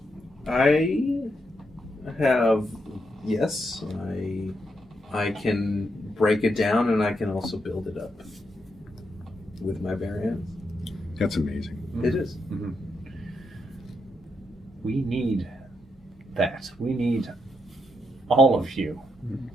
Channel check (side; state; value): both; normal; correlation 0.81